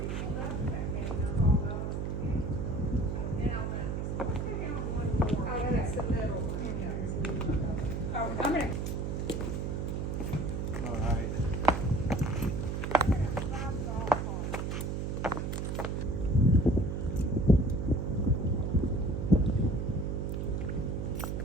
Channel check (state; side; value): noise; right; hum, 1 dB below the sound